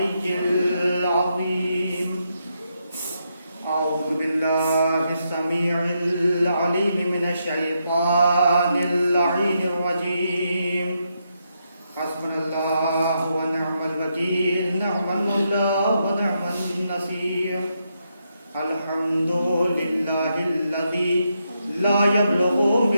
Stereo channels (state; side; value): inverted; both; correlation -0.81